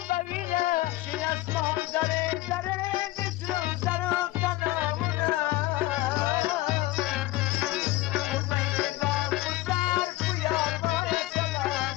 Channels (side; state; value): right; quieter; 17.5 dB